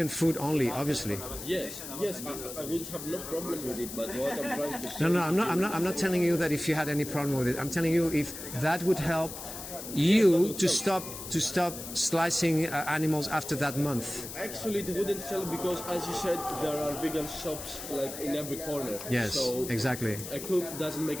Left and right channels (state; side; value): noise; left; hiss, 10 dB below the sound